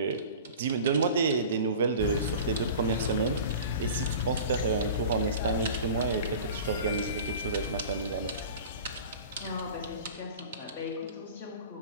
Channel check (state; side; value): inverted; both; correlation -0.39